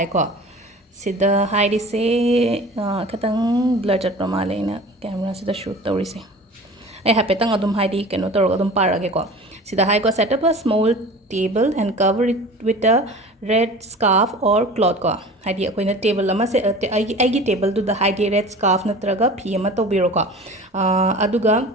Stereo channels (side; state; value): both; normal; correlation 0.40